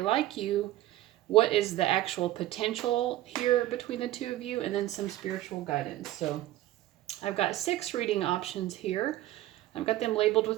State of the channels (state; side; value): quieter; left; 15.1 dB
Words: like you? What is the actual potential here between the two of you? And then some spiritual guidance. So I've got 6 reading options here. I've got them labeled